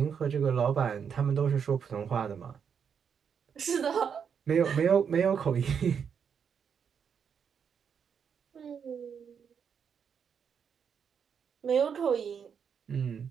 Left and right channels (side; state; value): left; quieter; 7.1 dB